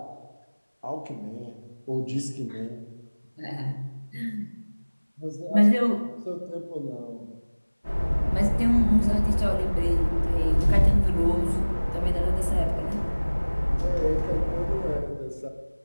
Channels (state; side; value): inverted; both; correlation -1.00